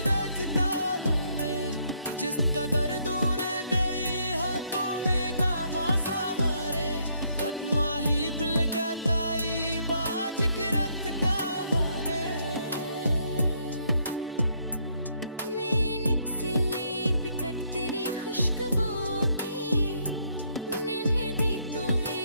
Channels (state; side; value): inverted; both; correlation -0.71